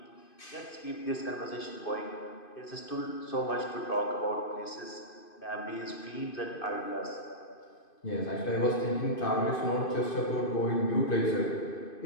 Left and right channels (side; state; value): right; late; 2.5 ms